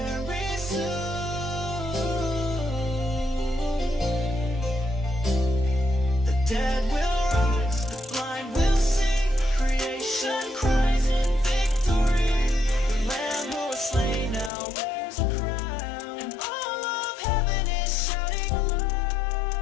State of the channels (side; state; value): right; drops out; at 14.5 s